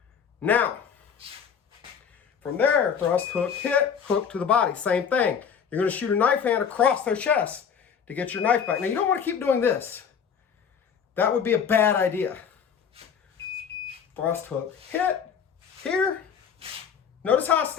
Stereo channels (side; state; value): right; quieter; 7.2 dB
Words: Now, from there, thrust, hook, hit, hook to the body. Same thing. You're going to shoot a knife hand across their chest to get your knife back. Now, you don't want to keep doing this. That would be a bad idea. Thrust, hook, hit. Here. Notice how I